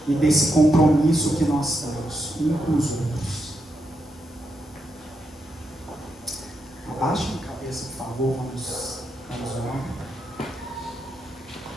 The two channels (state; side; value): normal; both; correlation 0.82